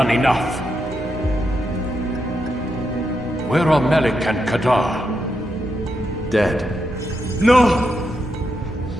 enough. Where are Malik and Kadar? Dead. No!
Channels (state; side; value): normal; both; correlation 0.83